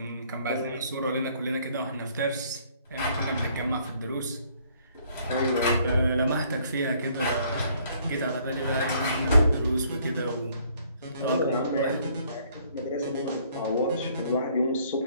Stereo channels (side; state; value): both; inverted; correlation -0.63